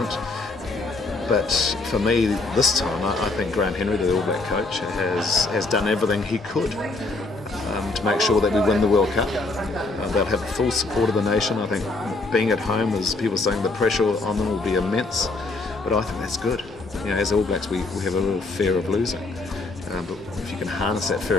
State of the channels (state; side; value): quieter; right; 3.4 dB